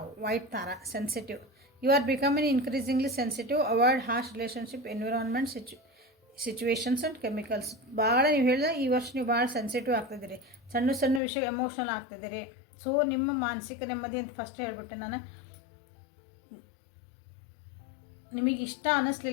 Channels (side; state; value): right; drops out; at 11.2 s